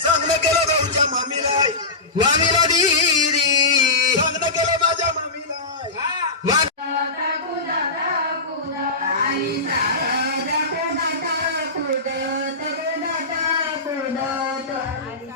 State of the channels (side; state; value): right; quieter; 3.1 dB